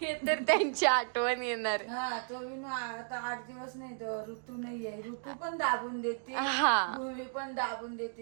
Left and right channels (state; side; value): silent; left; digital silence